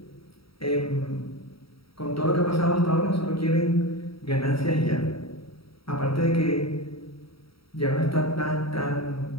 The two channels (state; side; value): late; right; 0.75 ms